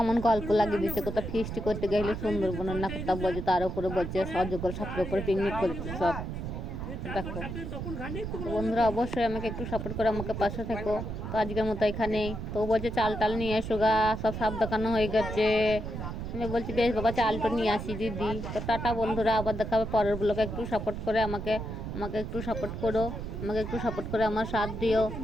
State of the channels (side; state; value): right; noise; rumble, 6 dB below the sound